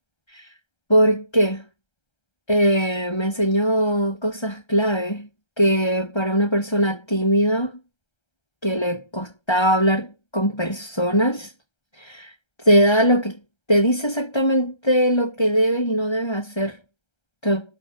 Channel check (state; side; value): late; right; 1.3 ms